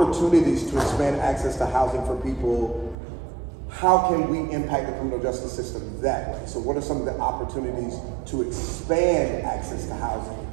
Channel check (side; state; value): left; drops out; at 3.0 s